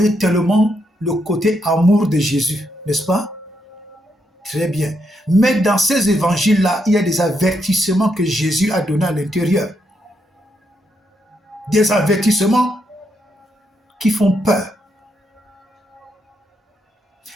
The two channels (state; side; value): normal; both; correlation 0.79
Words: tellement le côté amour de Jésus, n'est-ce pas? Très bien. Mais dans ces évangiles-là, il y a des avertissements que Jésus a donnés à l'intérieur. Des avertissements qui font peur.